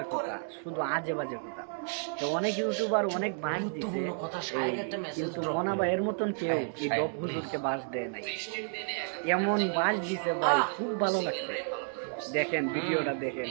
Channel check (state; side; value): silent; left; 57 dB below the other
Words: করেন। কথা, শুধু আজে বাজে কথা। তো অনেক ইউটিউবার অনেক বাস দিছে, গুরুত্বপূর্ণ কথা, শায়েক একটা মেসেজ কিন্তু ড্রপ মনা করে। ভাইয়ের মতন কেউ শায়েক, এই শায়েক, ডব হুজুরকে please। বাস দেয় নাই। এমন বাস দিছে ভাই, খুব ভালো লাগছে। দেখেন ভিডিওটা দেখেন,